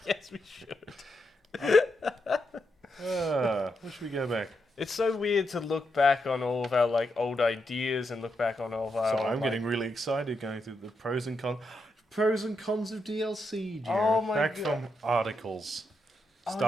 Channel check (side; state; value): both; normal; correlation 0.83